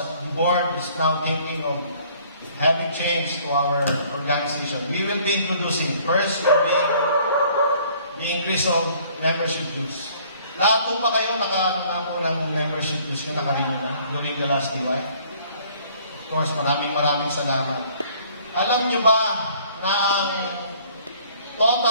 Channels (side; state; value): both; inverted; correlation -0.57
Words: the board is now thinking of having changed to our organization. We will be introducing, first will be the increase of membership dues. Lahat po ba kayo nakaano po ng membership dues nyo, nakarino na during the last DY? Of course, maraming salamat. Alam nyo ba na ang